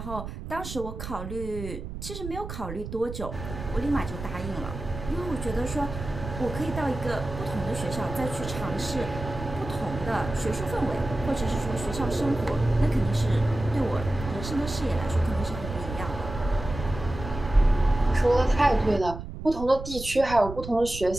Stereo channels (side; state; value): right; noise; rumble, 9 dB below the sound